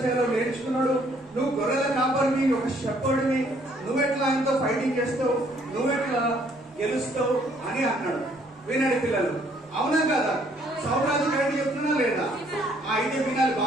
చేయాలో నేర్చుకున్నాడు. నువ్వు గొర్రెల కాపరివి, ఒక షెపర్డ్వి, నువ్వెట్లా ఆయనతో ఫైటింగ్ చేస్తావు? నువ్వెట్లా గెలుస్తావు అని అన్నాడు. వినండి పిల్లలు, అవునా కదా? సౌరాజు కరెక్ట్ చెప్తున్నా లేదా? అయితే వినాలి,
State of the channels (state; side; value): normal; both; correlation 0.65